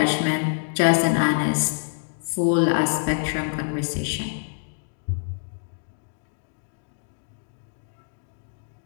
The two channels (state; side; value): silent; right; digital silence